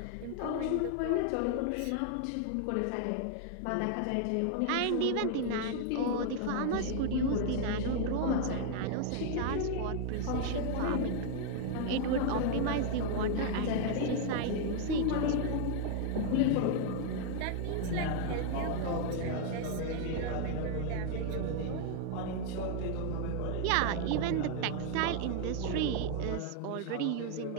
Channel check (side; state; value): both; different; correlation 0.00